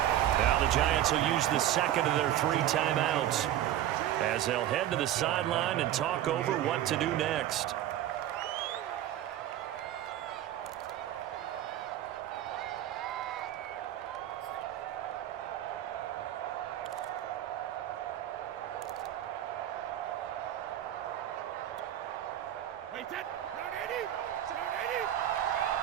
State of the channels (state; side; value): quieter; left; 12.3 dB